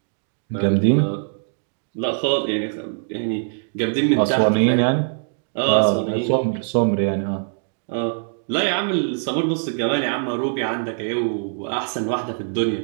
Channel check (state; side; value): silent; left; digital silence